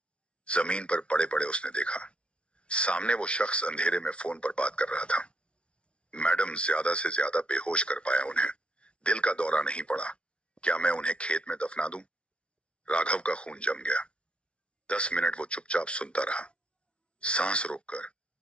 जमीन पर पड़े पड़े उसने देखा, सामने वो शख्स अंधेरे में फोन पर बात कर रहा था। मैडम, ज्यादा से ज्यादा बेहोश कर पाया उन्हें। दिल का दौरा नहीं पड़ा। क्या मैं उन्हें खेत में दफना दूं? राघव का खून जम गया। 10 मिनट वो चुपचाप सुनता रहा, सांस रोककर।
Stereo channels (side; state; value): right; late; 0.059 ms